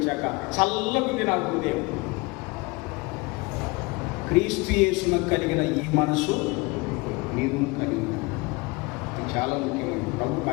చల్లకుంది నాకు హృదయం. క్రీస్తు యేసును కలిగిన ఈ మనసు నీవు కలిగి, ఇది చాలా ముఖ్యమైనది. ప్రభుకు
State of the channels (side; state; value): right; quieter; 25.6 dB